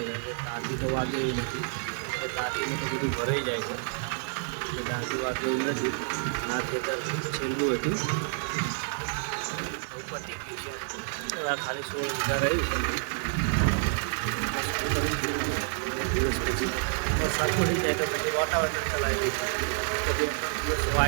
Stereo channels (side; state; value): left; silent; 59 dB below the other